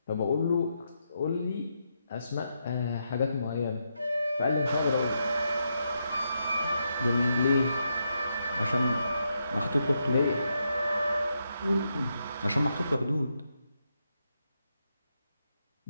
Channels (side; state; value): both; inverted; correlation -0.82